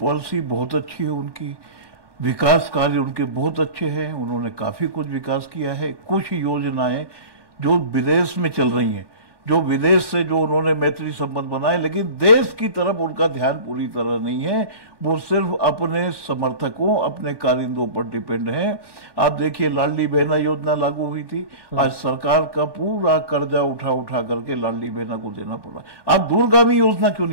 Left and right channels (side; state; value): left; late; 1.2 ms